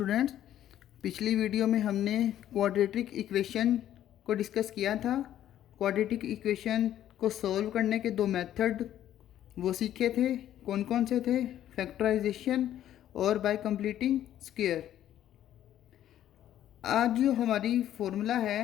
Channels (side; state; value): right; quieter; 11.7 dB